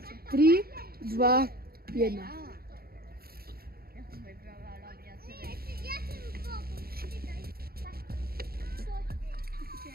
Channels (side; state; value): left; late; 0.44 ms